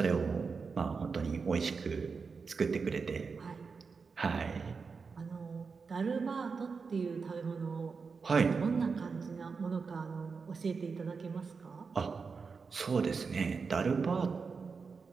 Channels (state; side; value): quieter; left; 5.1 dB